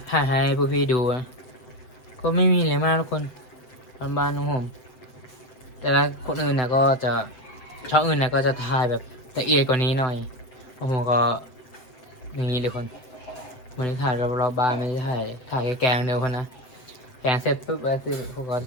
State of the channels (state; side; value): late; right; 7.5 ms